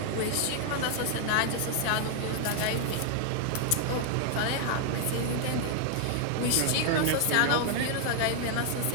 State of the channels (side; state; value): both; different; correlation 0.00